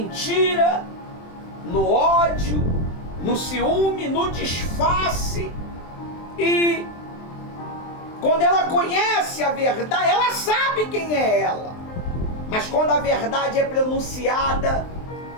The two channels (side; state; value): right; late; 23 ms